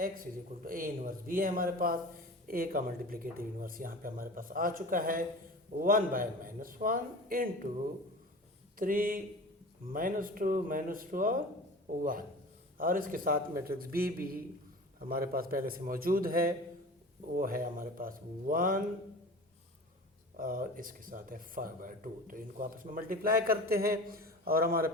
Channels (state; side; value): normal; both; correlation 0.37